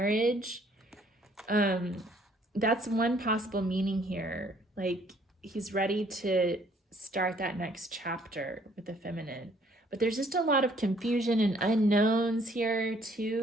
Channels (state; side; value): normal; both; correlation 0.62